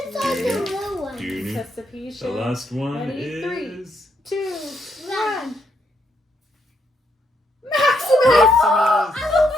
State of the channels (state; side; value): normal; both; correlation 0.76